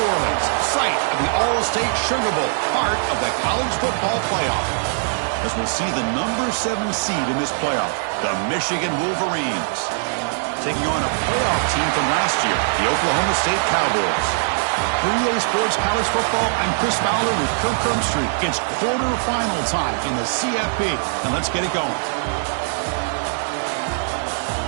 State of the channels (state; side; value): silent; left; digital silence